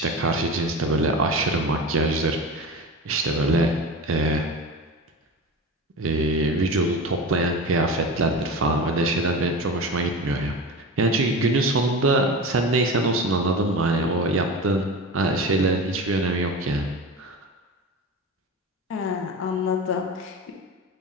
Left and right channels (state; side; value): normal; both; correlation 0.28